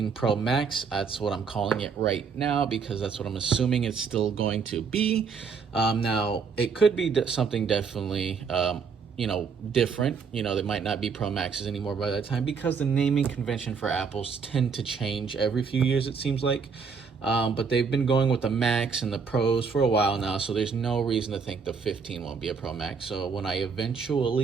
Pro Max. That's what I'm calling it right now, because that's what I'm assuming it's still going to be. Now it could be something definitely different. There might not be Pro Maxes anymore by that time, because the naming convention for Apples tend to change every few years, it seems like. But they've been going with the Max and the Pros for a while now, so there's no reason to think the 15 won't be a Pro Max. So when I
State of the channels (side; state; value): left; quieter; 5.7 dB